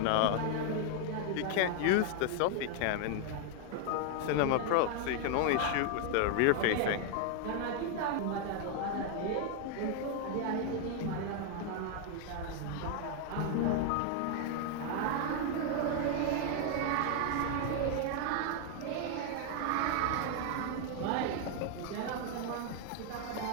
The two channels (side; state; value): both; different; correlation 0.00